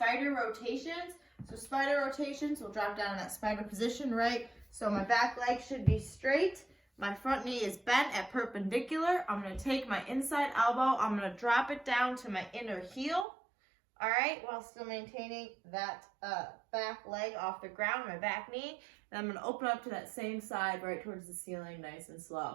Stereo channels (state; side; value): drops out; left; at 13.2 s